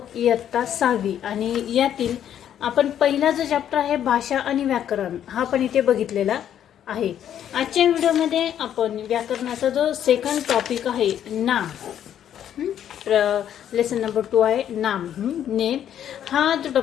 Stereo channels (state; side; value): quieter; right; 10.1 dB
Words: इयत्ता 6वी आणि यातील आपण पहिला जो चॅप्टर आहे भाषा आणि व्याकरण हा पण इथे बघितलेला आहे. आजच्या व्हिडिओमध्ये आपण व्याकरणाचा जो सेकंड टॉपिक आहे नाम, लेसन नंबर 2 आहे नाम, नेम, हा जो